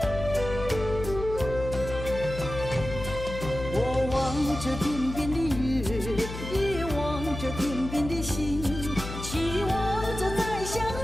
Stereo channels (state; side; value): noise; left; hum, 9 dB below the sound